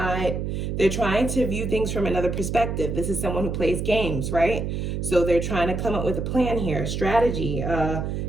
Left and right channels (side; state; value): right; noise; hum, 3 dB below the sound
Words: They're trying to view things from another perspective. This is someone who plays games, right? So they're trying to come up with a plan here, strategy,